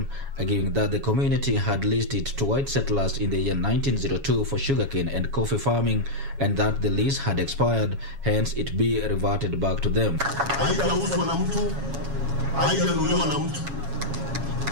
arguing that the community had leased it to white settlers in the year 1902 for sugarcane and coffee farming, and that the lease had expired, hence it be reverted back to them. Haijauzwa na mtu, haijanunuliwa na mtu,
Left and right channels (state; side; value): late; left; 7.2 ms